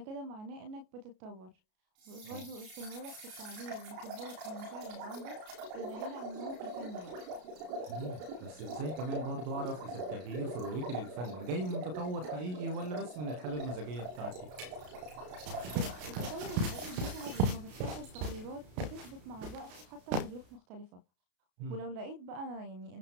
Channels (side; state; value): left; late; 33 ms